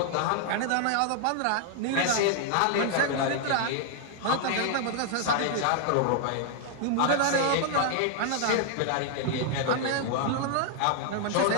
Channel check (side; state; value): both; different; correlation 0.00